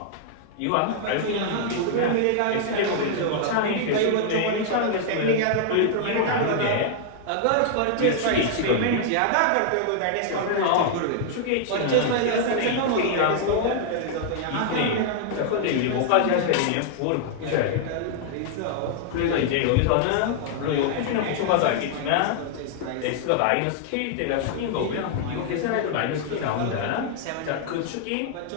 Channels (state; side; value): different; both; correlation -0.01